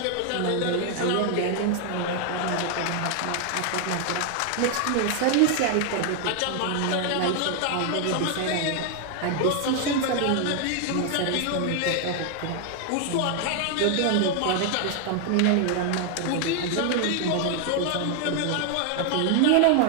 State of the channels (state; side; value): different; both; correlation 0.00